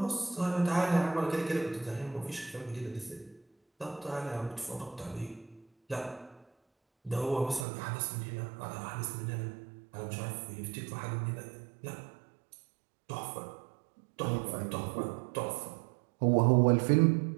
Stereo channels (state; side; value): drops out; left; at 7.7 s